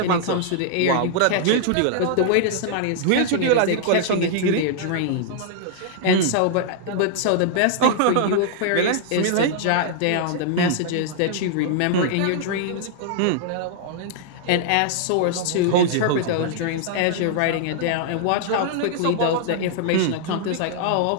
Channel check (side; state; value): both; different; correlation -0.01